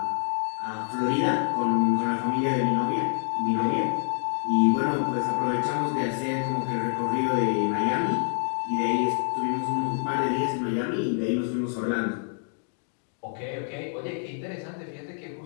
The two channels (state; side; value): silent; right; 60 dB below the other